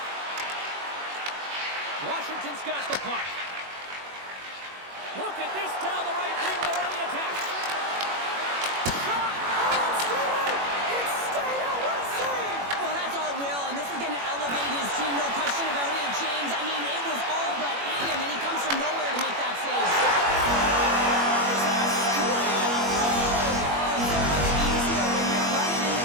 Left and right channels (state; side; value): late; left; 21 ms